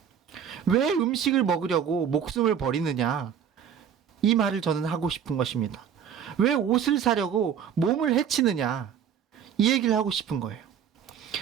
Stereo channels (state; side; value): quieter; left; 8.2 dB